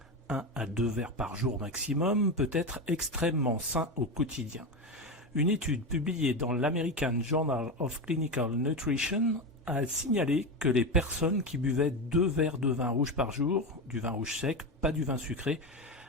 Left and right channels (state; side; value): normal; both; correlation 0.17